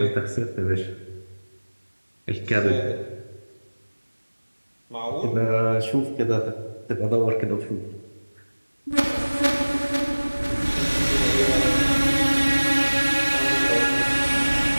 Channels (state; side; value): inverted; both; correlation -1.00